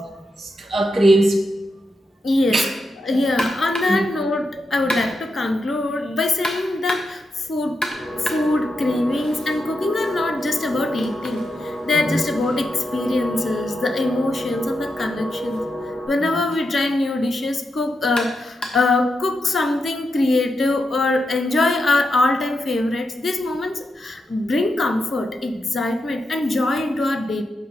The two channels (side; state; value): both; normal; correlation 0.86